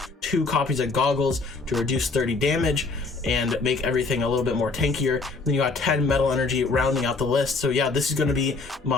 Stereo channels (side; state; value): right; quieter; 3.8 dB